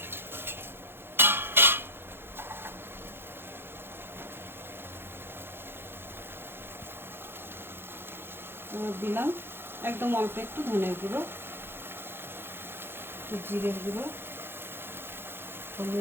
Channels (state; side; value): late; left; 0.11 ms